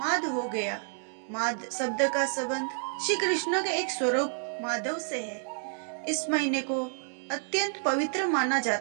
माध हो गया। माध शब्द का संबंध श्री कृष्ण के एक स्वरूप माधव से है। इस महीने को अत्यंत पवित्र माना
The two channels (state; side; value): silent; left; 58 dB below the other